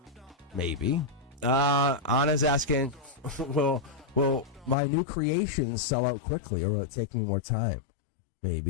Maybe. Anna's asking, will my new creations sell out quickly, or will it take me more time?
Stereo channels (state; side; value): drops out; right; at 4.8 s